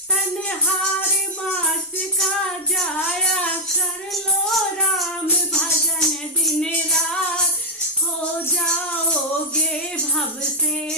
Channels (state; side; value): normal; both; correlation -0.01